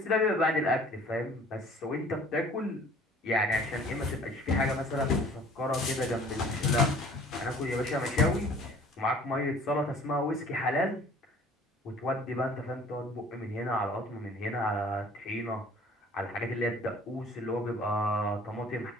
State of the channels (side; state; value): both; normal; correlation 0.51